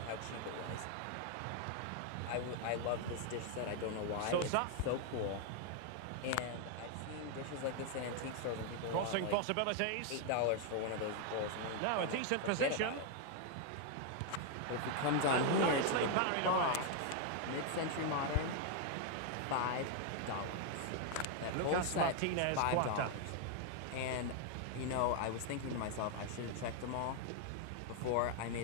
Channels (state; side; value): different; both; correlation 0.00